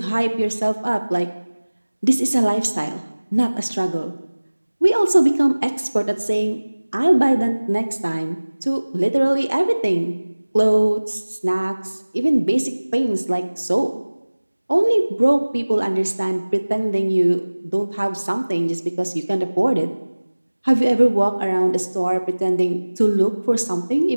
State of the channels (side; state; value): both; inverted; correlation -1.00